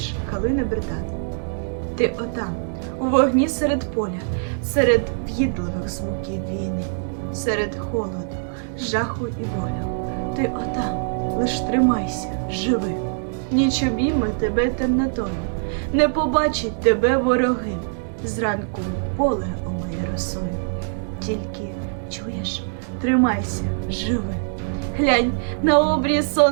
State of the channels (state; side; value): silent; left; digital silence